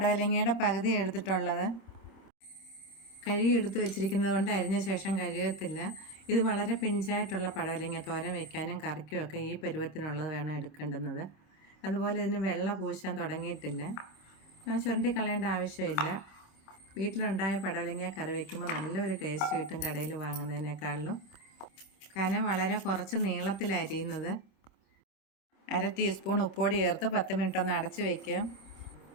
പകുതി എടുത്തിട്ടുള്ളത് കഴുകി എടുത്ത് വെച്ചിരിക്കുന്നത് കൊണ്ട് അരിഞ്ഞ ശേഷം കഴുകത്തില്ല. ഇത് വളരെ പിഞ്ചായിട്ടുള്ള പടവലങ്ങ തോരൻ വയ്ക്കാനും കറിക്കും ഒക്കെ ഈ പരുവത്തിനുള്ളത് വേണം എടുക്കേണ്ടുന്നത്. അതുപോലെ ഇതിന് വെള്ള പൂശാൻ തുടങ്ങിയിട്ടില്ല. ചുരണ്ടി കളയേണ്ട ആവശ്യമില്ല. വീട്ടിലുണ്ടായ പടവലങ്ങ കറി വയ്ക്കുമ്പോൾ നല്ലൊരു ടേസ്റ്റ് കിട്ടും കടയിൽ വാങ്ങുന്നതിനേക്കാളിലും. കനം വളരെ കുറച്ച് നീളത്തിലരിയുന്നത്. 1/2 ടീസ്പൂൺ ഉപ്പുപൊടി ചേർത്ത് 10 മിനിറ്റ് ഒന്ന് അടച്ച് വയ്ക്കുക.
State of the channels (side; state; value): right; late; 26 ms